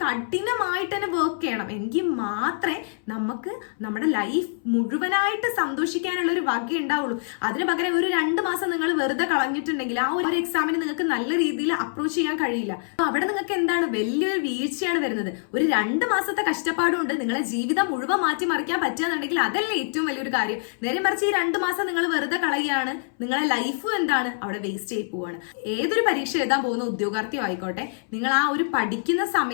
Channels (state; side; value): silent; right; 62 dB below the other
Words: കഠിനമായിട്ട് തന്നെ വർക്ക് ചെയ്യണം, എങ്കിൽ മാത്രമേ മാത്രമേ നമുക്ക് നമ്മുടെ ലൈഫ് മുഴുവനായിട്ട് സന്തോഷിക്കാനുള്ള ഒരു വക ഉണ്ടാവുള്ളൂ. അതിന് പകരം ഒരു 2 മാസം നിങ്ങൾ വെറുതെ കളഞ്ഞിട്ടുണ്ടെങ്കിൽ ആ ഒരു എക്സാമിന് നിങ്ങൾക്ക് നല്ല രീതിയിൽ അപ്രോച്ച് ചെയ്യാൻ കഴിയില്ല. അവിടെ നിങ്ങൾക്ക് എന്താണ് വലിയൊരു വീഴ്ചയാണ് വരുന്നത്. ഒരു 2 മാസത്തെ കഷ്ടപ്പാടുകൊണ്ട് നിങ്ങളെ ജീവിതം മുഴുവൻ മാറ്റിമറിക്കാൻ പറ്റുകയെന്നുണ്ടെങ്കിൽ അതല്ലേ ഏറ്റവും വലിയൊരു കാര്യം. നേരെ മറിച്ച് ഈ 2 മാസം നിങ്ങൾ വെറുതെ കളയുകയാണ്, നിങ്ങളെ ലൈഫ് എന്താണ് അവിടെ വേസ്റ്റ് ആയി പോവാണ്. ഏതൊരു പരീക്ഷ എഴുതാൻ പോകുന്ന ഉദ്യോഗാർത്ഥിയോ ആയിക്കോട്ടെ, നിങ്ങൾ ആ ഒരു പഠിക്കുന്ന